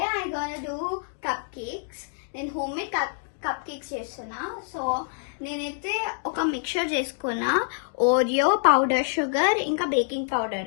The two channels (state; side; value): silent; right; 61 dB below the other